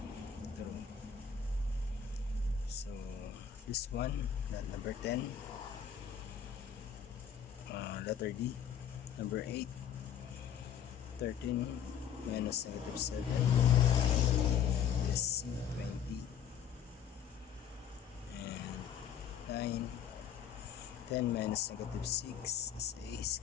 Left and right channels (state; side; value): quieter; right; 8.4 dB